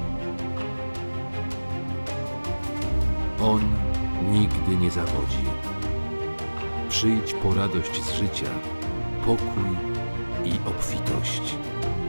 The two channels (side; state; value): both; inverted; correlation -1.00